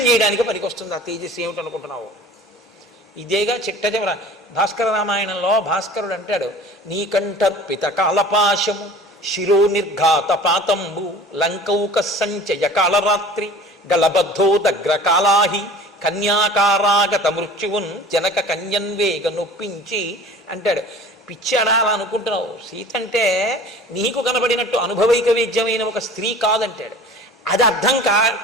చేయడానికి పనికొస్తుంది ఆ తేజస్సు. ఏమిటనుకుంటున్నావు? ఇదేగా చిట్ట చివర భాస్కర రామాయణంలో భాస్కరుడు అంటాడు, నీకంఠర్పిత కాలపాశము శిరో నిర్ఘాత పాతంబు లంకౌక సంచయ కాళరాత్రి గలబద్ధో దగ్ర కాళాహి కన్యాకారాగత మృత్యువున్ జనక కన్యన్వేగ నొప్పించి అంటాడు. పిచ్చాడా అలా అనుకుంటున్నావు, సీత అంటే నీకు కనబడినట్టు అనుభవైక వేద్యమైన ఒక స్త్రీ కాదంటాడు. అది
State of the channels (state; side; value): normal; both; correlation 0.43